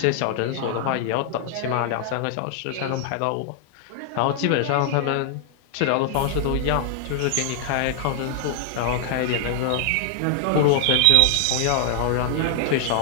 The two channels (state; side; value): different; both; correlation -0.01